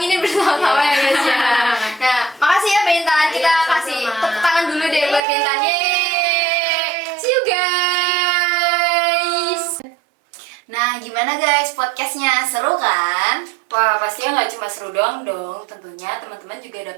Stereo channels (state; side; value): drops out; left; at 5.2 s